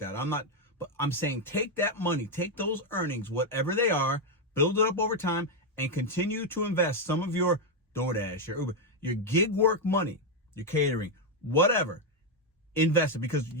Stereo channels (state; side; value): normal; both; correlation 0.04